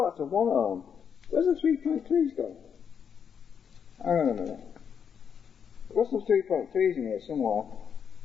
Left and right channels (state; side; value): quieter; right; 7.3 dB